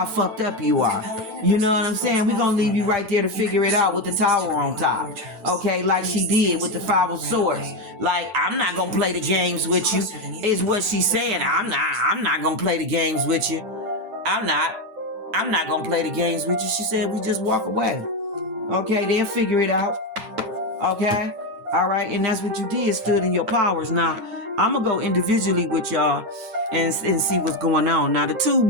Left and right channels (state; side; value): late; left; 9.0 ms